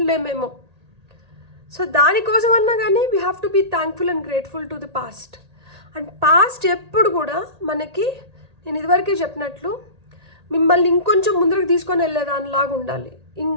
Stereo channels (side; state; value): left; late; 1.8 ms